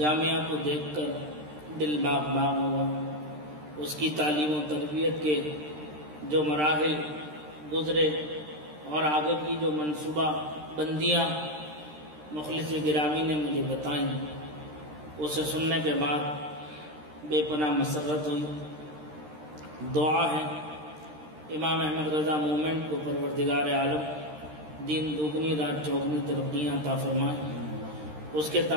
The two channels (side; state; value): left; late; 13 ms